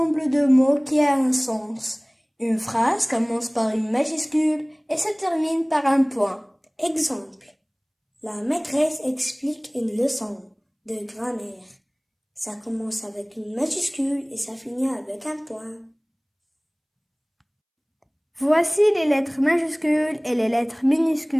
de mots qui a un sens. Une phrase commence par une majuscule et se termine par un point. Exemple. La maîtresse explique une leçon de grammaire. Ça commence avec une majuscule et ça finit avec un point. Voici les lettres majuscules et les lettres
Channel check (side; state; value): both; identical; correlation 1.00